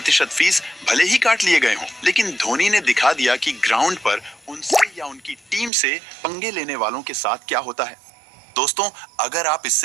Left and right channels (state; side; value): drops out; left; at 5.7 s